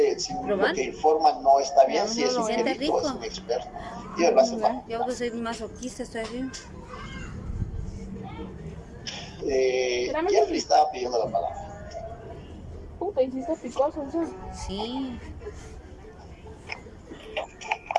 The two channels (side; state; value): both; identical; correlation 1.00